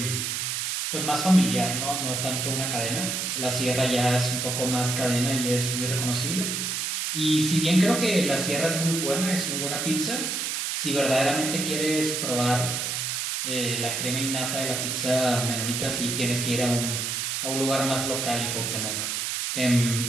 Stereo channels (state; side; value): noise; right; hiss, 1 dB below the sound